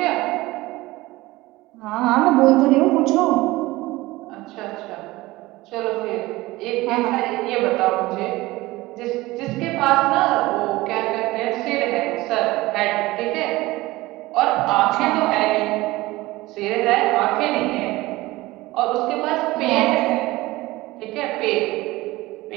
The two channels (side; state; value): left; quieter; 19.5 dB